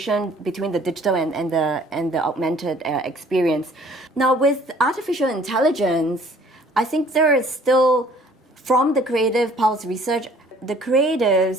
between the digital and the augmented experience. Now, with artificial intelligence, I think there is still, from the Creative Pulse research, the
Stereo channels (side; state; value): both; normal; correlation 0.56